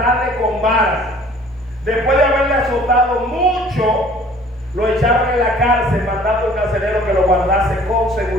con varas. Después de haberle azotado mucho, lo echaron en la cárcel, mandando al carcelero que lo guardase con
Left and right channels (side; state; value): both; normal; correlation 0.52